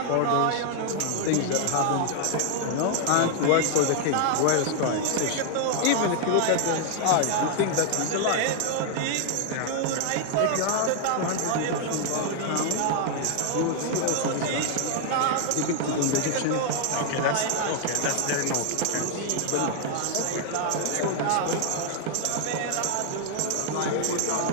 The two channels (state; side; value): different; both; correlation 0.00